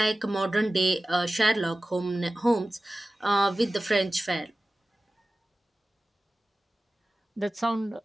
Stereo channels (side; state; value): both; normal; correlation 0.96